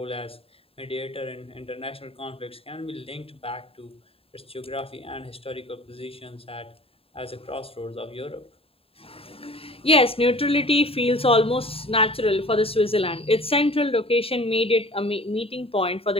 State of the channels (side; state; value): right; late; 0.27 ms